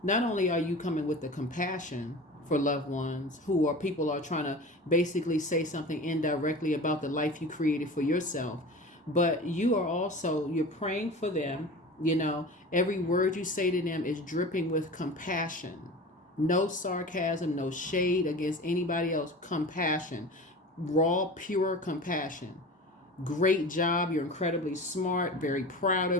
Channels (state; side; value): normal; both; correlation 0.35